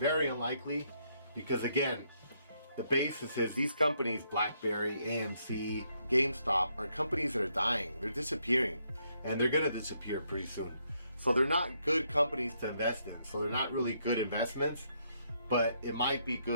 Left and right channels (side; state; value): both; inverted; correlation -0.75